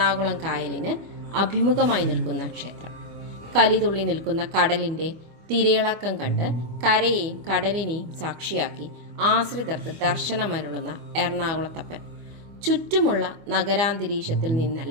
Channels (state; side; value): late; left; 25 ms